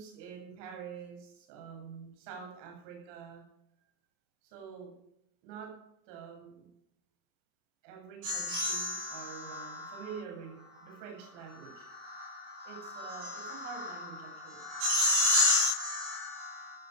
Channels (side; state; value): left; late; 29 ms